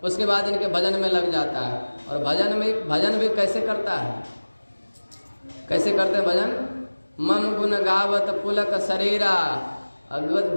उसके बाद इनके भजन में लग जाता है। और भजन भी कैसे करता है? कैसे करते हैं भजन? मम गुण गावत पुलक शरीरा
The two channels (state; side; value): inverted; both; correlation -1.00